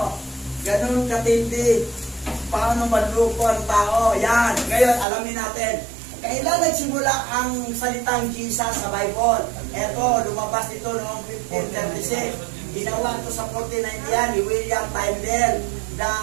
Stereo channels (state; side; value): drops out; left; at 5.1 s